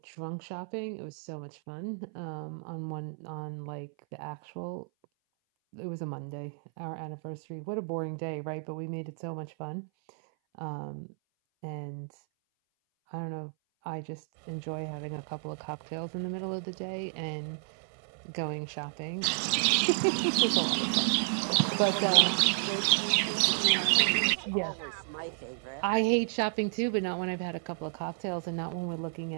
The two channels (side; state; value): left; silent; 57 dB below the other